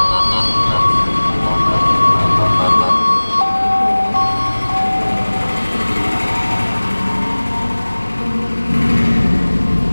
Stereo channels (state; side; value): inverted; both; correlation -1.00